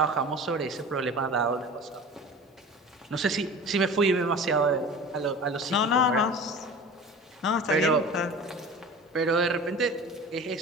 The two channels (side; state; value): both; normal; correlation 0.37